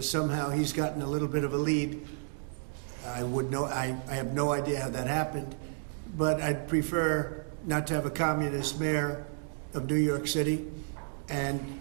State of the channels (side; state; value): left; silent; digital silence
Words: somehow he's gotten a little bit of a lead. I have no idea how that happened, but I'd prefer not to have a communist mayor of New York City. And,